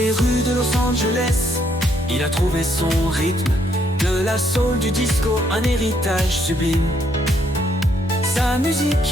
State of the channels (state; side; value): normal; both; correlation 0.72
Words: rues de Los Angeles, il a trouvé son rythme. De la soul, du disco, un héritage sublime. Sa